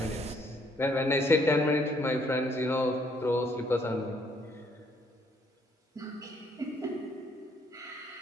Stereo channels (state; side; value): normal; both; correlation 0.67